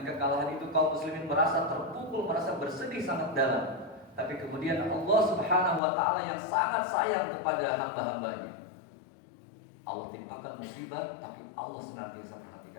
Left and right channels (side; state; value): right; drops out; at 5.8 s